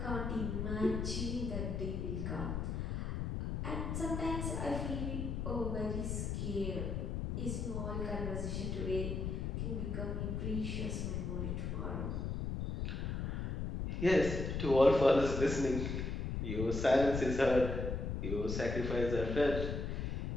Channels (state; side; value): noise; left; rumble, 2 dB below the sound